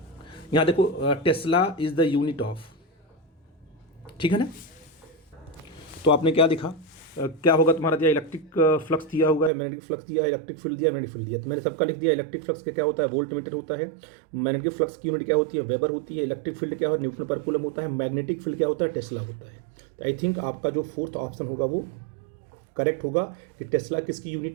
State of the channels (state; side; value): drops out; left; at 9.5 s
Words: यहाँ देखो, Tesla is the unit of, ठीक है ना। तो आपने क्या दिखा, क्या होगा तुम्हारा, दिया इलेक्ट्रिक फ्लक्स दिया हुआ है, मैग्नेटिक फ्लक्स दिया है, इलेक्ट्रिक फील्ड दिया, मैग्नेटिक फील्ड दिया। तो मैंने सबका लिख दिया। इलेक्ट्रिक फ्लक्स का क्या होता है? वोल्ट मीटर होता है। मैग्नेटिक फ्लक्स की यूनिट क्या होती है? वेबर होती है। इलेक्ट्रिक फील्ड क्या है? न्यूटन पर कूलम होता है। मैग्नेटिक फील्ड क्या होता है? टेस्ला होता है। तो आई थिंक आपका जो 4th ऑप्शन होगा वो करेक्ट होगा कि टेस्ला किसकी